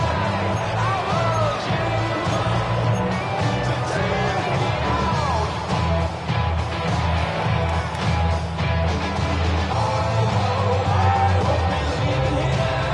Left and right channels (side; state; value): both; identical; correlation 1.00